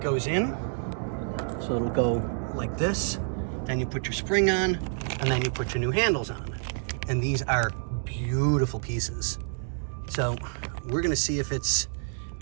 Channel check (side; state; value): left; silent; digital silence